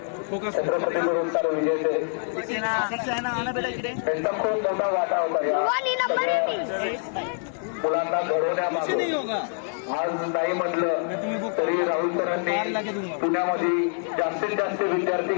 छत्रपती पुरस्कार विजेते सक्सेना आना बेटा इकडे त्यांचा खूप मोठा वाटा होता या मुलांना घडवण्यामागे. आज नाही म्हटलं तरी राहुल सरांनी पुण्यामध्ये जास्तीत जास्त विद्यार्थी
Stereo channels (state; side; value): silent; right; 61 dB below the other